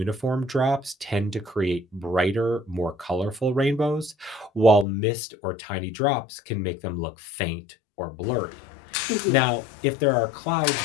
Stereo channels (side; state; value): right; drops out; at 4.9 s